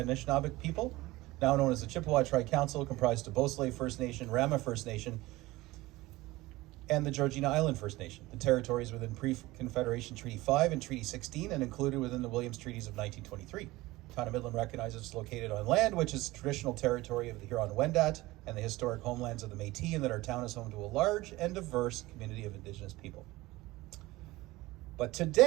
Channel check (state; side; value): quieter; left; 19.4 dB